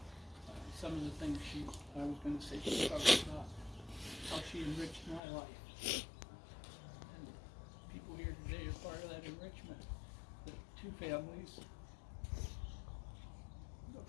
some of the things I was going to say she talked about how she enriched my life. And people here today are part of that enrichment. The 2 families,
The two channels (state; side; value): drops out; right; at 5.2 s